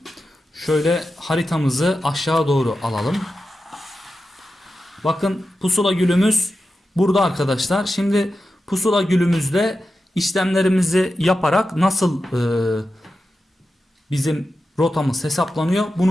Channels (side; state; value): both; normal; correlation 0.91